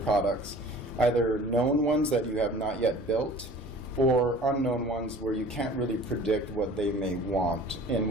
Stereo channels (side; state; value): both; normal; correlation 0.46